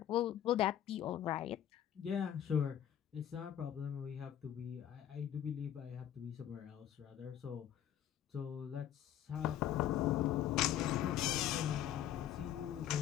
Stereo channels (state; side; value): quieter; right; 10.8 dB